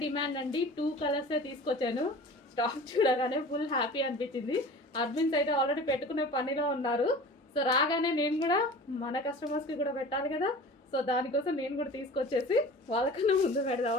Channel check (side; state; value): both; normal; correlation 0.39